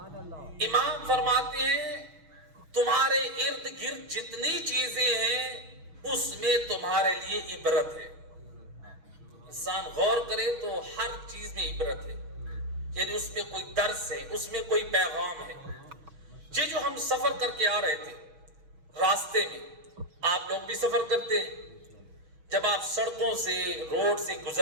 اللہ امام فرماتے ہیں تمہارے ارد گرد جتنی چیزیں ہیں اس میں تمہارے لیے عبرت ہے۔ انسان غور کرے تو ہر چیز میں عبرت ہے، یعنی اس میں کوئی درس ہے، اس میں کوئی پیغام ہے۔ یہ جو ہم سفر کر کے آ رہے تھے راستے میں، آپ لوگ بھی سفر کرتے ہیں، جب آپ سڑکوں سے روڈ سے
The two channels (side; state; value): left; late; 6.0 ms